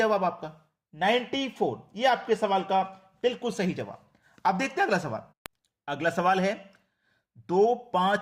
आपका 94। ये आपके सवाल का बिल्कुल सही जवाब। अब देखते हैं अगला सवाल। अगला सवाल है 2,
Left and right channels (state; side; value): identical; both; correlation 1.00